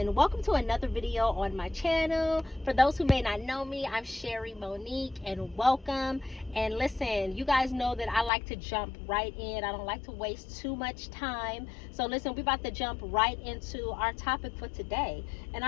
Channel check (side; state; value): right; drops out; at 8.3 s